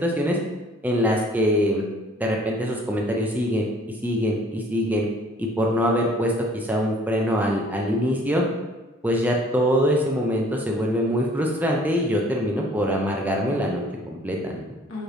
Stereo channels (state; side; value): normal; both; correlation 0.55